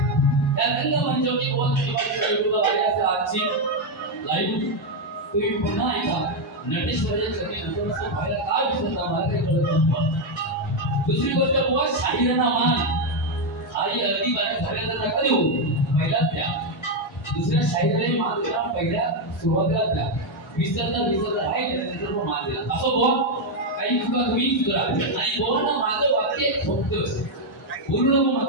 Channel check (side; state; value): both; normal; correlation 0.03